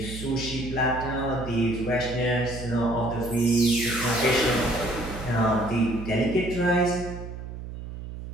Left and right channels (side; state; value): right; noise; hum, 10 dB below the sound